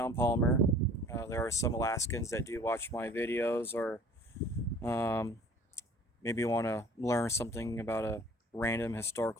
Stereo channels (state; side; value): normal; both; correlation 0.49